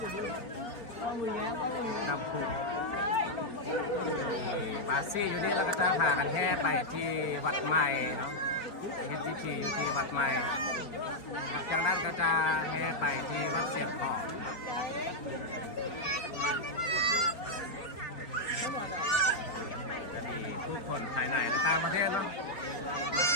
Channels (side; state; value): right; late; 4.3 ms